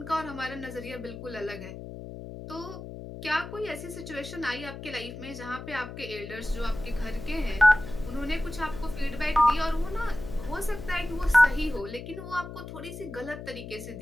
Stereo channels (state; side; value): noise; left; hum, 10 dB below the sound